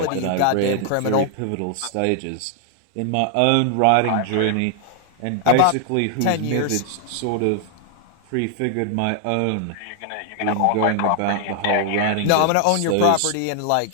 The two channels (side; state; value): both; different; correlation 0.00